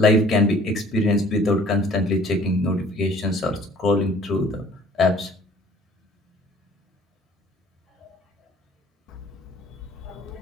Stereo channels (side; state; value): both; normal; correlation 0.54